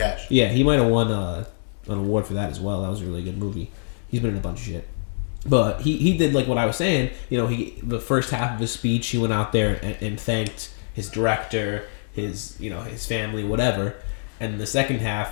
Yeah, he might have won an award for that as well. That was a really good movie. He's been in a bunch of shit. But he did like what I was saying. You know, the first half of his speech, he went out there and thanked his director, his family, whatever. And the second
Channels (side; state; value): right; silent; digital silence